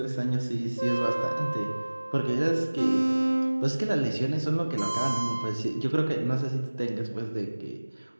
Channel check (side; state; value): both; inverted; correlation -1.00